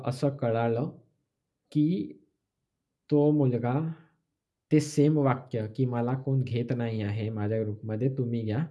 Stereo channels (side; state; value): both; identical; correlation 1.00